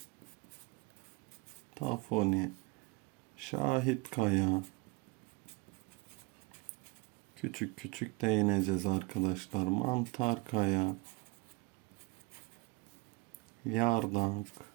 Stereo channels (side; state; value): left; quieter; 25.6 dB